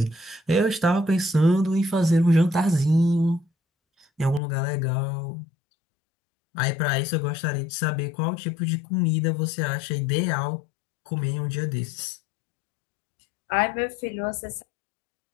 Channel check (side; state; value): right; drops out; at 4.4 s